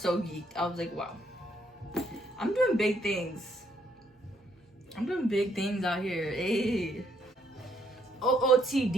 geeked. I was like, wow. I'm doing big things. I'm doing big things out here. Hey.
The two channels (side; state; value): both; normal; correlation 0.71